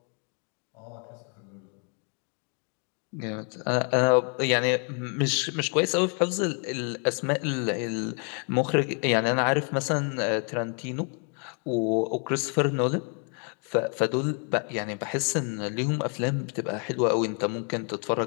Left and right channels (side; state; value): right; quieter; 39.9 dB